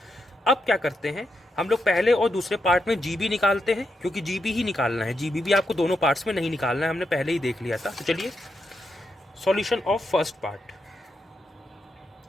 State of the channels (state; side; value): normal; both; correlation 0.83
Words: अब क्या करते हैं हम लोग? पहले और दूसरे पार्ट में GB निकालते हैं, क्योंकि GB ही निकालना है। GB भी आपको दोनों पार्ट्स में नहीं निकालना है, हमने पहले ही देख लिया था। तो चलिए, solution of first part.